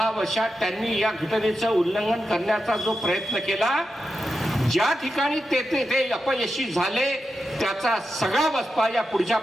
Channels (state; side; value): normal; both; correlation 0.89